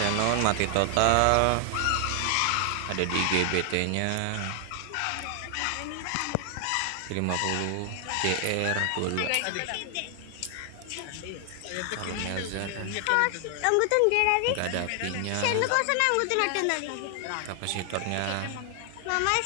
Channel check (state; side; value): different; both; correlation 0.00